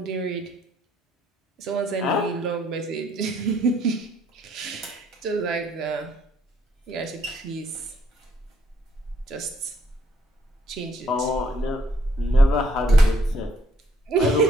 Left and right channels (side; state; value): both; normal; correlation 0.67